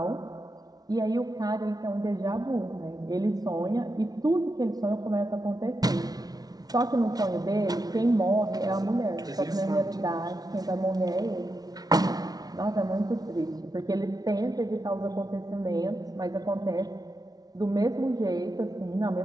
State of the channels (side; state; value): left; late; 0.19 ms